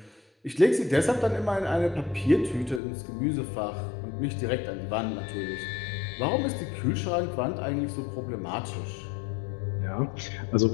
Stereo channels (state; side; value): drops out; right; at 2.8 s